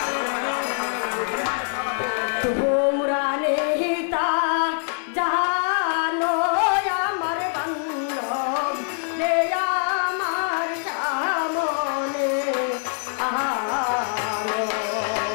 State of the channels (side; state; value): right; silent; 63 dB below the other